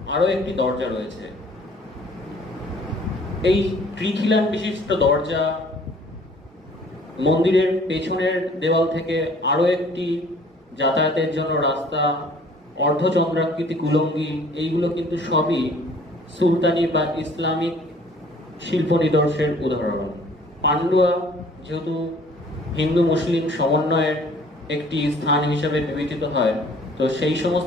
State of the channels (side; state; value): both; normal; correlation 0.54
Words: আরো একটি দরজা রয়েছে। এই ত্রিখিলান বিশিষ্ট দরজা, মন্দিরের পেছনের দেওয়াল থেকে আরো একটি যাতায়াতের জন্য রাস্তা, অর্ধচন্দ্রাকৃতি কুলঙ্গি, এইগুলো কিন্তু সবই সুলতানি বা ইসলামিক শিল্প নিদর্শের উদাহরণ। পান্ডুয়া যেহেতু হিন্দু মুসলিম সমন্বয়ের একটি স্থান হিসেবে বিবেচিত হয়, তো সেই